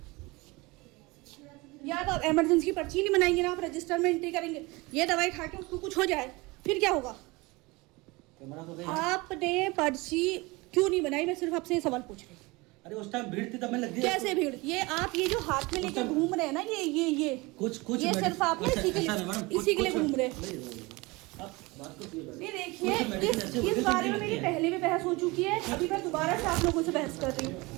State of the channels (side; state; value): left; quieter; 23.8 dB